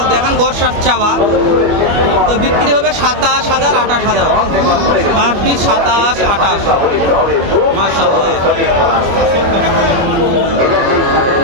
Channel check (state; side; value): late; left; 25 ms